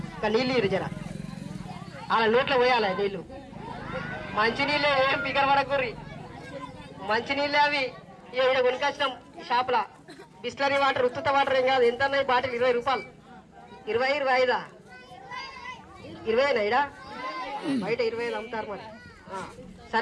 ఇక నీళ్ళు ఇరు జర, అలా నోట్లో పోయాలి నీళ్ళు. మంచినీళ్ళే, ఏం పికర్ పడకూర్రి. మంచినీళ్ళే అవి. ఇక్కడ కొనుకొచ్చినాం షాప్లా. బిస్లరీ వాటర్, ఉత్తుత వాటర్ ఏం కాదు. ఎంత అన్నాయి బాటిల్? 20 రూపాయలు. 20, 25 20 ఇడా బయట 25 అమ్ముతారు మరి.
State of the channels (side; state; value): both; identical; correlation 1.00